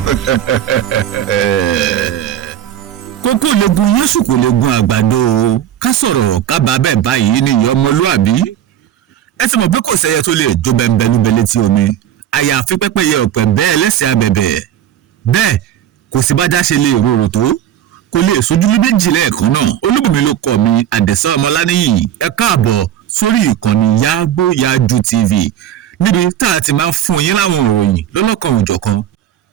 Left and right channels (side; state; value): left; quieter; 10.8 dB